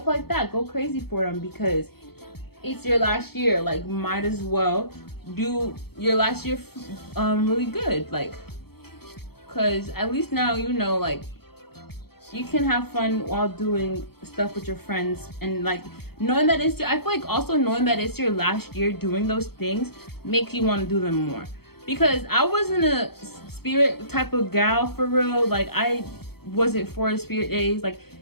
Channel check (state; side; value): late; right; 0.96 ms